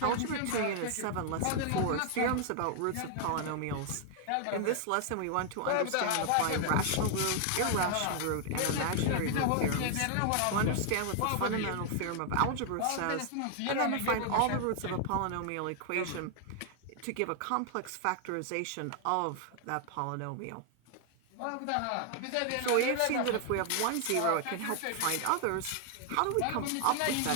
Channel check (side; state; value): both; different; correlation 0.00